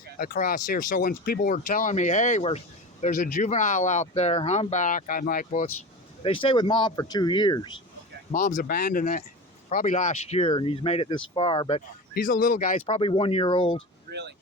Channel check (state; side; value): normal; both; correlation 0.29